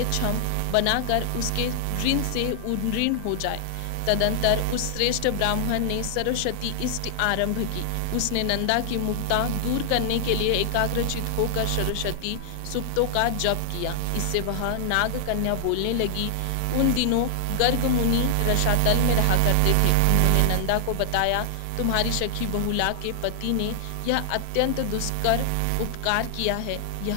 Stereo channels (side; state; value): both; different; correlation 0.00